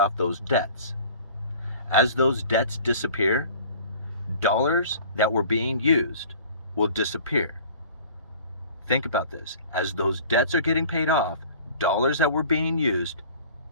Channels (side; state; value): both; inverted; correlation -0.46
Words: those debts. As those debts disappear, dollars that were being used will disappear. Think about this. As those debts are getting paid off, dollars that were being used